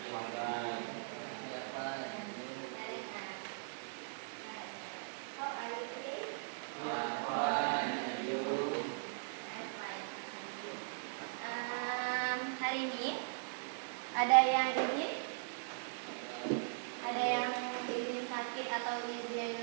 How are you today? I'm fine. Hari ini ada yang izin sakit atau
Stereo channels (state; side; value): silent; left; digital silence